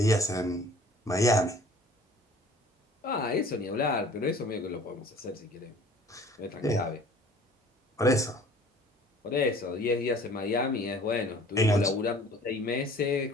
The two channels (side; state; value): both; normal; correlation 0.50